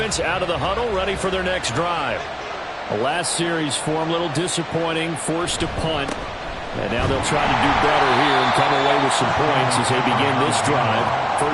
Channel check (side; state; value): both; identical; correlation 1.00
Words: out of the huddle, ready for their next drive. The last series form a little disappointing, forced to punt. And now they'll try to do better here and come away with some points as they begin this drive.